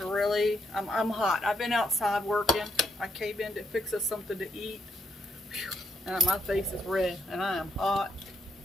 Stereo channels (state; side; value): normal; both; correlation 0.76